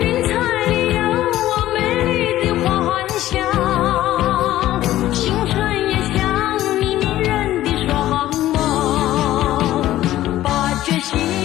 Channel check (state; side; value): quieter; right; 14.3 dB